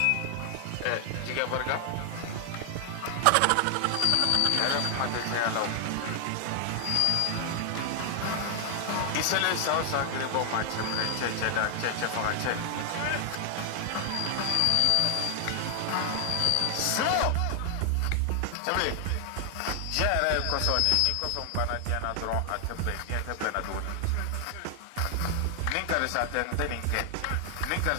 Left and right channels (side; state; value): both; different; correlation 0.00